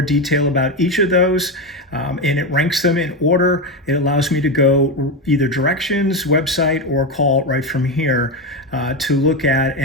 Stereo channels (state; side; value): normal; both; correlation 0.13